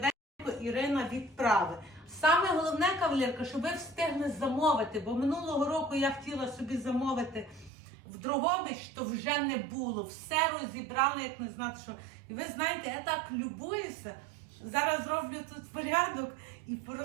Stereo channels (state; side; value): drops out; left; at 7.7 s